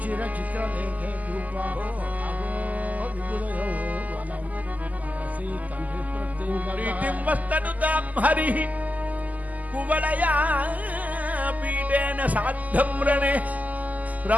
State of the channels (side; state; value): left; late; 0.078 ms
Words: చిత్రలేఖే రూపా అహో విపులయో వనం మనసి తండ్రి ప్రీతిం వస్తనుతాం హరి కువలయా పీఠేన సాద్ధం రణే